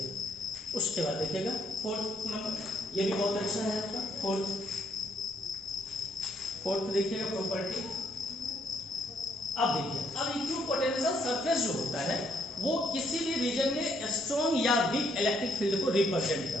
उसके बाद देखिएगा फोर्थ नंबर, ये भी बहुत अच्छा है आपका फोर्थ देखिएगा प्रॉपर्टी। अब देखिए, अब इक्विपोटेंशियल सरफेस जो होता है वो किसी भी रीजन में स्ट्रॉन्ग या वीक इलेक्ट्रिक फील्ड को रिप्रेजेंट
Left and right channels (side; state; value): both; normal; correlation 0.71